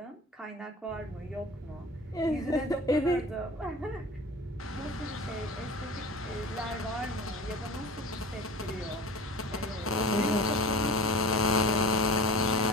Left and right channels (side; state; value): both; normal; correlation 0.37